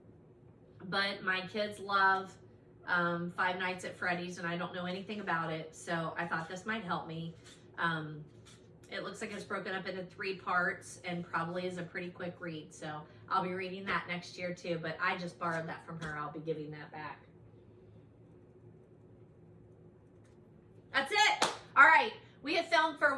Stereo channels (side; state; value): both; identical; correlation 1.00